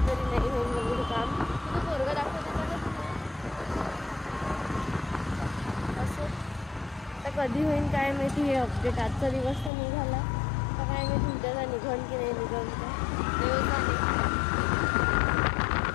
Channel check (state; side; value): drops out; right; at 9.7 s